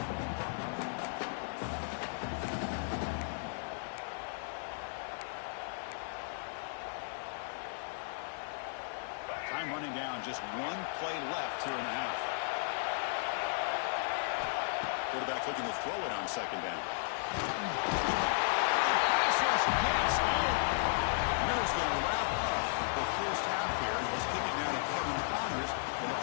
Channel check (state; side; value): silent; right; 55 dB below the other